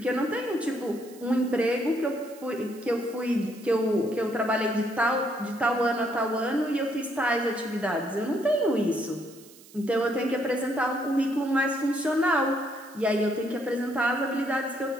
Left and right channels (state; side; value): noise; right; hiss, 22 dB below the sound